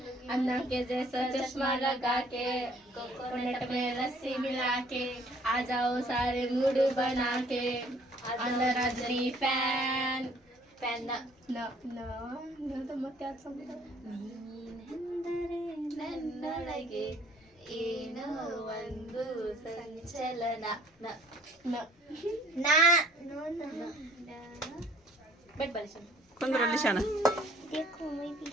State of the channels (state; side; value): normal; both; correlation 0.58